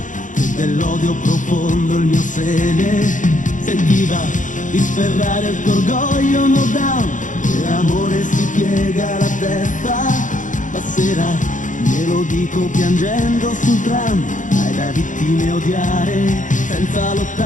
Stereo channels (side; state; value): right; late; 0.37 ms